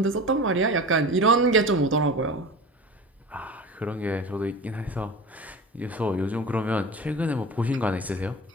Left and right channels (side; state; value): both; normal; correlation 0.33